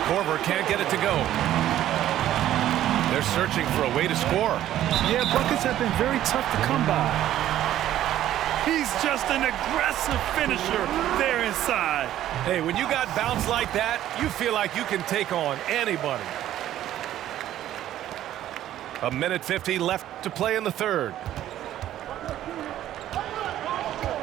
Korver can't get it to go. They're searching for a way to score. Yeah, buckets have been very tough to come by. He's just an aggressive finisher there inside. Hey, when you got bounce like that, you feel like you can take on anybody. 1:50 left to play in the third.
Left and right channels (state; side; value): quieter; left; 12.6 dB